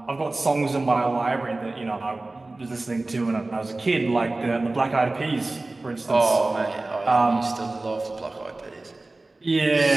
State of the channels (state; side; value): quieter; left; 3.1 dB